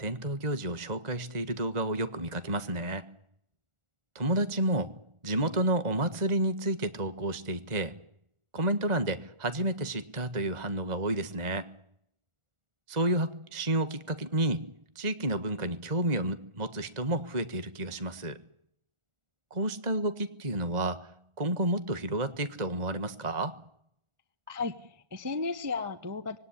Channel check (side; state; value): left; late; 1.4 ms